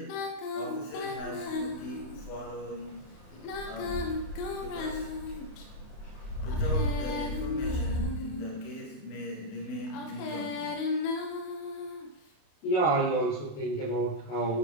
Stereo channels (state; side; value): late; right; 28 ms